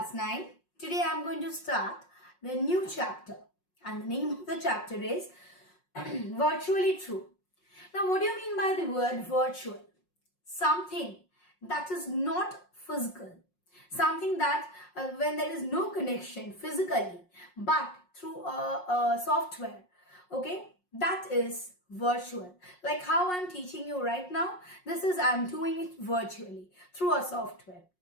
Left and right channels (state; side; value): late; right; 5.5 ms